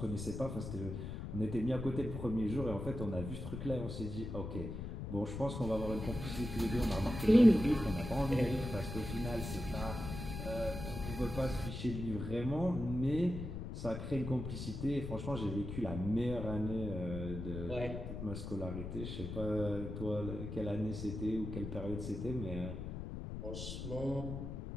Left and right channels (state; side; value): noise; left; rumble, 6 dB below the sound